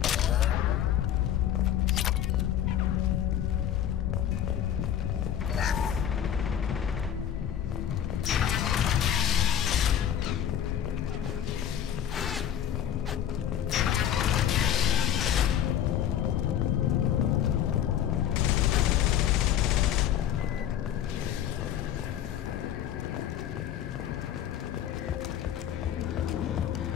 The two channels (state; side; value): quieter; right; 10.3 dB